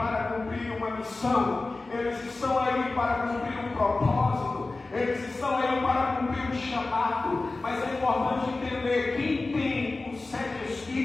cumprir uma missão. Eles estão aí para cumprir um propósito. Eles estão aí para cumprir um chamado. Mas é importante entender: quem tem os 7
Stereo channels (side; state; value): right; quieter; 3.3 dB